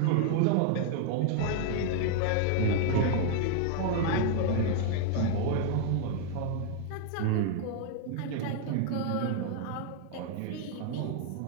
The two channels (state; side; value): different; both; correlation 0.00